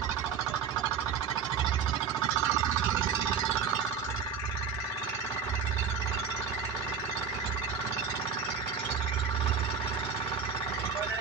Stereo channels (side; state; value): left; quieter; 6.2 dB